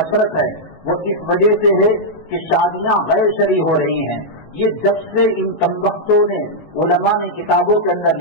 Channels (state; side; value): late; right; 19 ms